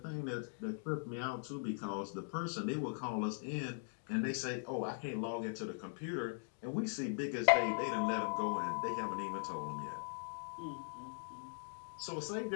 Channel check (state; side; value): silent; right; digital silence